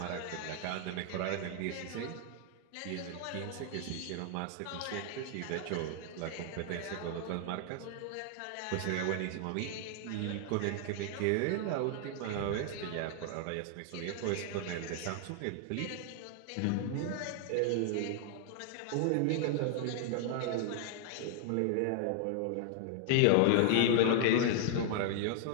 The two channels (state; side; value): different; both; correlation 0.00